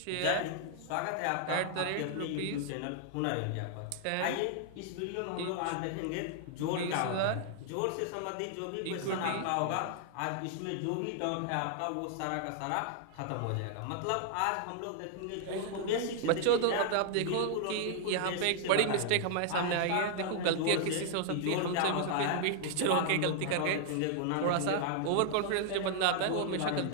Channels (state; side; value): different; both; correlation 0.00